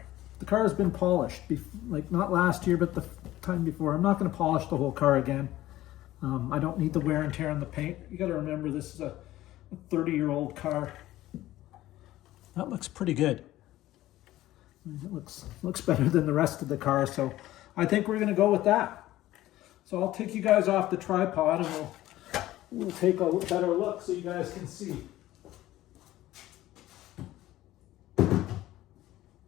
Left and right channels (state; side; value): quieter; right; 15.3 dB